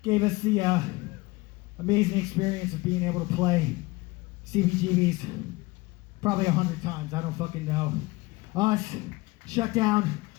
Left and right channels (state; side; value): quieter; right; 22.2 dB